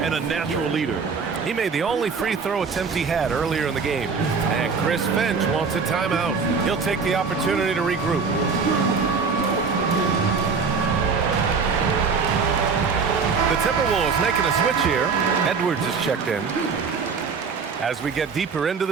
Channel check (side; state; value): left; quieter; 5.3 dB